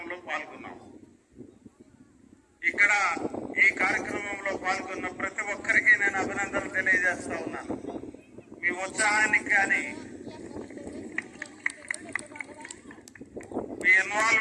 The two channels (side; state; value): both; identical; correlation 1.00